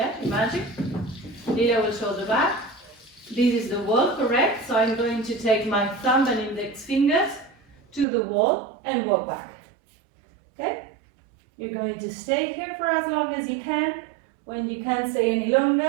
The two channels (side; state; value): left; drops out; at 8.1 s